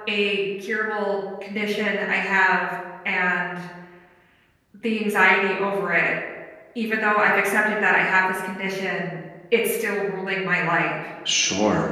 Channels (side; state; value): both; identical; correlation 1.00